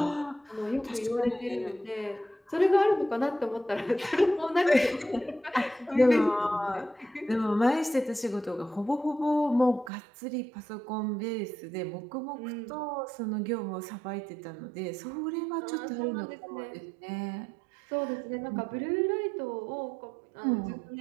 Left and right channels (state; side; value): drops out; left; at 9.9 s